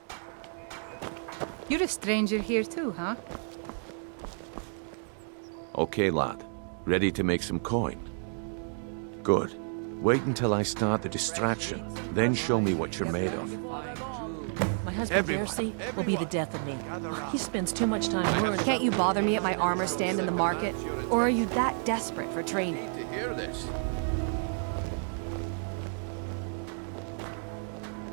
You're a stranger here too, huh? Okay, lad. Ready to make some coin? Good. Wait until I start the distraction, then show me what you're made of. My husband Darcy will be the death of me. He spends too much time worrying. Can't you bother me at my armor stand in the market? Or are you that desperate for training? To hear this.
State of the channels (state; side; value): silent; left; 57 dB below the other